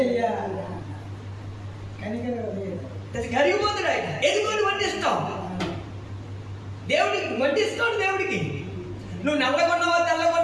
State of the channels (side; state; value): both; identical; correlation 1.00